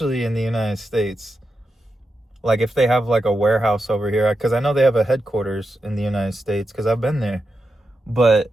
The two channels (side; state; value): both; normal; correlation 0.88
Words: in the United States. Like, if they have like a warehouse over here, because I know they have a headquarters in the United States because I've been there. But